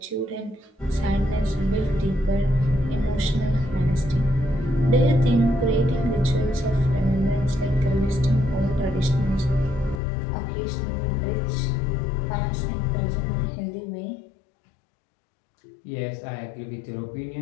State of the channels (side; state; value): right; drops out; at 10.0 s